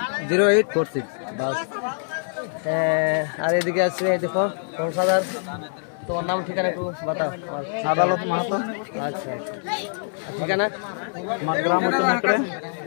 বাস, আর এদিকে আছে দেখো সংসাদার, তোমার নাম ঠিকানা একটু বাতাও। আদালত মাহাতো। আচ্ছা, ঠিকানা আমার গ্রাম হচ্ছে নেকড়ে।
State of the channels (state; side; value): silent; right; digital silence